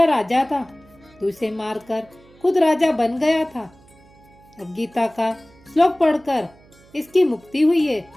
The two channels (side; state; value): right; noise; hum, 27 dB below the sound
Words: राजा था, तू इसे मारकर खुद राजा बन गया था। अब गीता का श्लोक पढ़कर इसकी मुक्ति हुई है।